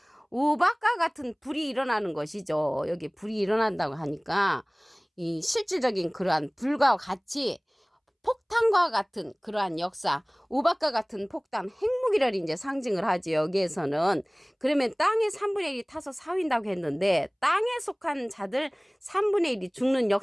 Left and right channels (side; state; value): both; identical; correlation 1.00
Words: 우박과 같은 불이 일어나는 것이죠. 여기 불이 일어난다고 하니까 이 실질적인 그러한 불과 같이 폭탄과 같은 그러한 역사, 우박과 같은 폭탄, 핵무기를 이제 상징을 하지 여기에서는. 그러면 땅의 3분의 1이 타서 사윈다고 했는데 땅에 속한 자들 3분의 1이 죽는